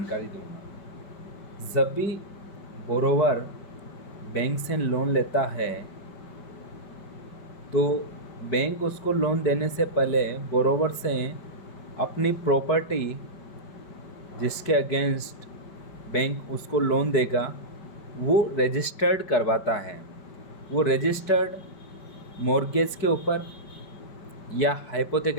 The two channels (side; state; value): right; late; 5.1 ms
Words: दूंगा। जब भी बोरोवर बैंक से लोन लेता है तो बैंक उसको लोन देने से पहले बोरोवर से अपनी प्रॉपर्टी जिसके अगेंस्ट बैंक उसको लोन देगा वो रजिस्टर्ड करवाता है। वो रजिस्टर्ड मॉर्गेज के ऊपर या